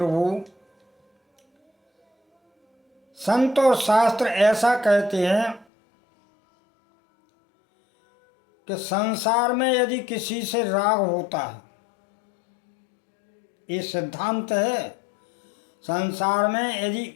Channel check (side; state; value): right; drops out; at 5.7 s